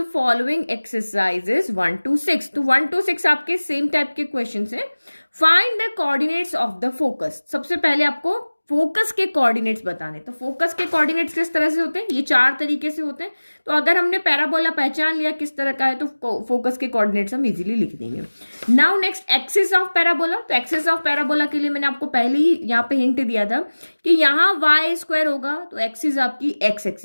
following exercises 1 to 6, तो 1 to 6 आपके सेम टाइप के क्वेश्चन है। Find the coordinates of the focus. सबसे पहले आपको फोकस के कोऑर्डिनेट्स बताने। तो फोकस के कोऑर्डिनेट्स किस तरह से होते हैं, ये 4 तरीके से होते हैं। तो अगर हमने पैराबोला पहचान लिया किस तरह का है तो फोकस के कोऑर्डिनेट्स हम इजीली लिख देंगे। Now next, axis of parabola. तो एक्सिस ऑफ पैराबोला के लिए मैंने आपको पहले ही यहाँ पे हिंट दिया था कि यहाँ वाई स्क्वायर होगा तो एक्सिस आपकी एक्स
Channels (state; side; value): inverted; both; correlation -1.00